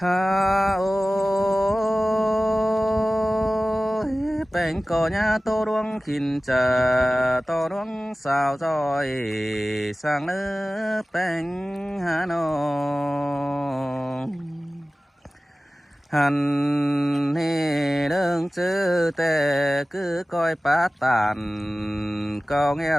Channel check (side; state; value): both; normal; correlation 0.97